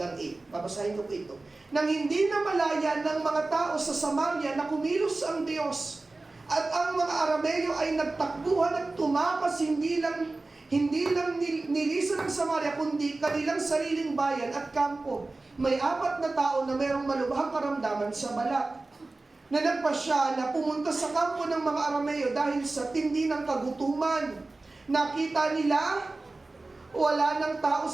8. Babasahin ko po ito. Nang hindi na malaya ng mga tao sa Samaria na kumilos ang Diyos, at ang mga Arameo ay nagtakbuhan at tumakas hindi lang nilisan ng Samaria, kundi kanilang sariling bayan at kampo. May 4 na tao na mayroong malubhang karamdaman sa balat, na nagpasya na pumunta sa kampo ng mga Arameo dahil sa tindi ng kagutuman. Nakita nila, wala ng tao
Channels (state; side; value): quieter; left; 3.3 dB